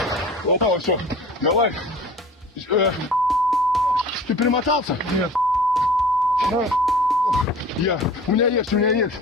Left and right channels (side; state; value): both; normal; correlation 0.42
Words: Опа, все. Давай. Ты перемотался? Нет. У меня есть.